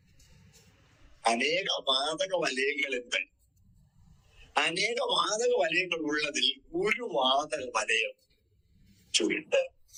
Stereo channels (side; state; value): both; identical; correlation 1.00